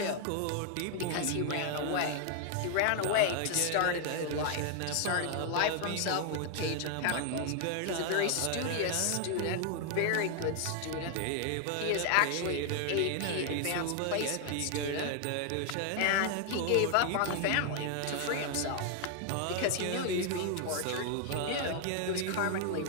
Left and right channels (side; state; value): both; different; correlation 0.00